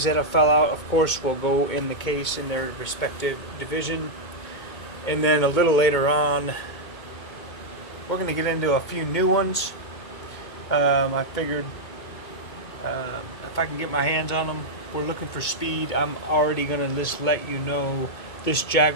that have fell out, of course, will go in the case in their respective division. And then a little later on, we're going to get into a few new ones. I figured if I can get my hands on them, we're looking for speed. I'm already going to just let you know this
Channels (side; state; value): right; late; 2.2 ms